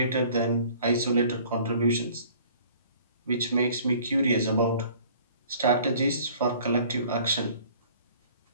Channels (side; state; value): both; inverted; correlation -0.52